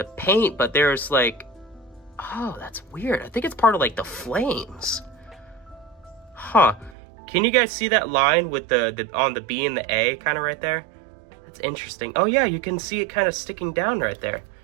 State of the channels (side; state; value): left; drops out; at 7.0 s